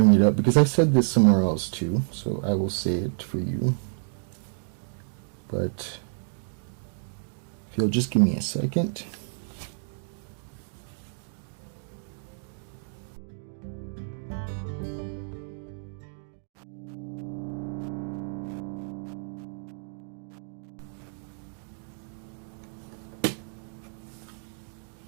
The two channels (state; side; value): silent; left; digital silence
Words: it up because I said this somewhere else too, so I will say it for you. But if you'll just give me a second.